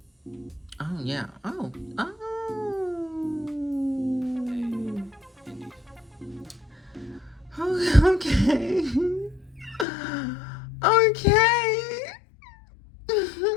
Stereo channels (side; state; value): right; drops out; at 9.9 s